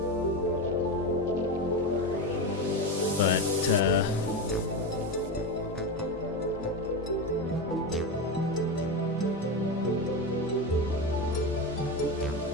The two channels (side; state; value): both; normal; correlation 0.18